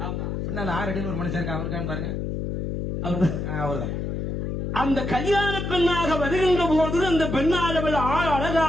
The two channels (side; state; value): left; noise; hum, 3 dB below the sound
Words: பின்னால 6 அடியில் ஒரு மனுஷன் இருக்கா, அவருக்கான்னு பாருங்க. அவர்தான். அந்த கல்யாண பெண்ணாக வருகின்ற போது அந்த பெண்ணாளவள்